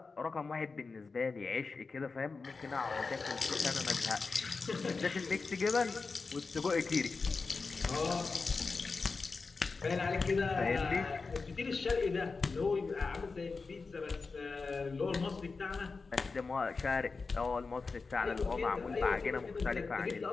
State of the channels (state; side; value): quieter; right; 4.3 dB